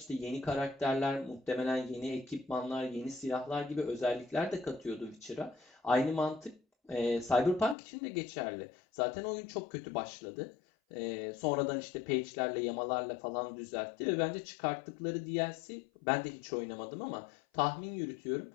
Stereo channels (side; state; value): right; drops out; at 7.8 s